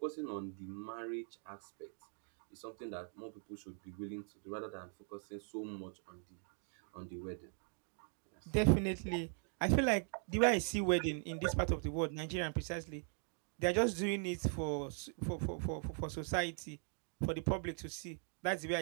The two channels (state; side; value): silent; left; 51 dB below the other